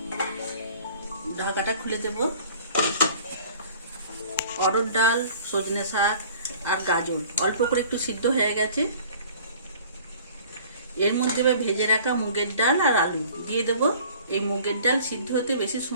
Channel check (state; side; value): inverted; both; correlation -0.49